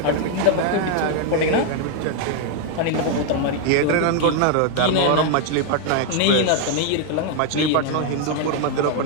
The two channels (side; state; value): both; different; correlation 0.00